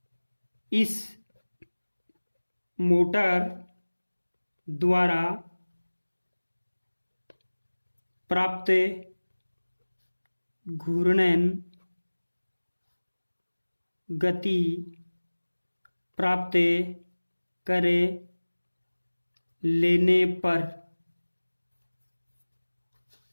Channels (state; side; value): inverted; both; correlation -1.00